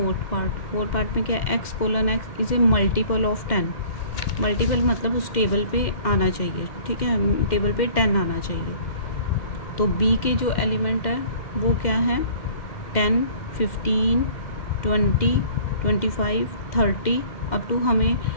पार्ट में क्या है, x colon x is A multiple of 10। Multiple मतलब उस टेबल पे आना चाहिए, ठीक है, टेबल पे 10 आना चाहिए, तो बी के जो एलिमेंट है वो क्या है, 10 15 20 25 30 अप टू हमें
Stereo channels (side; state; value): right; late; 2.1 ms